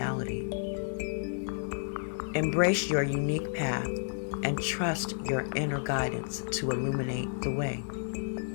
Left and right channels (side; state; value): right; silent; digital silence